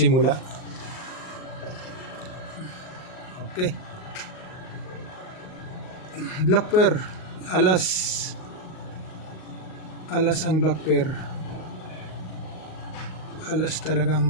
Okay. Black pair. Alas ang black pair. Alas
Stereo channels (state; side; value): late; right; 38 ms